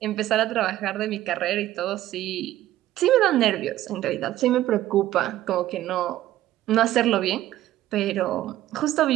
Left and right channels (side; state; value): left; quieter; 14.1 dB